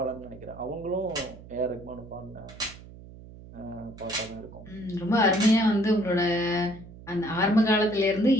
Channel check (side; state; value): right; noise; hum, 17 dB below the sound